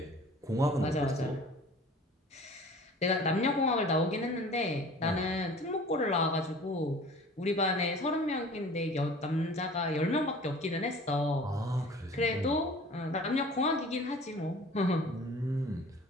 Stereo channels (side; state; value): both; normal; correlation 0.45